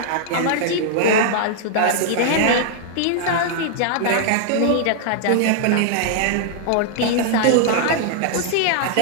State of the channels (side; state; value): both; different; correlation -0.01